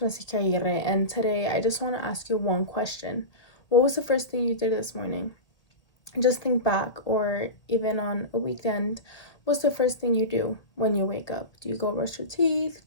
Aguirre, and today I just want to ask you one question. What was the first thing you did this morning? Just think back, or even on a weekend, what's the first thing you do when you wake up? Do you go brush your teeth?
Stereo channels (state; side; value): late; right; 1.8 ms